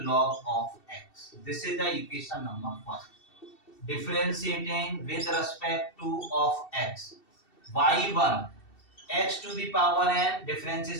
log of x. This is the equation number 1. Differentiating with respect to of x. y1 x to the power n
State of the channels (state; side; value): late; right; 2.7 ms